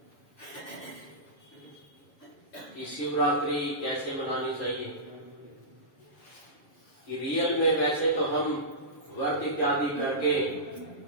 कि शिवरात्रि कैसे मनानी चाहिए। कि रियल में वैसे तो हम व्रत इत्यादि करके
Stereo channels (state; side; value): late; right; 7.2 ms